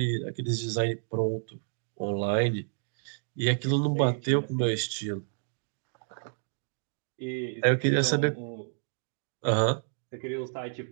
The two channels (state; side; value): silent; left; digital silence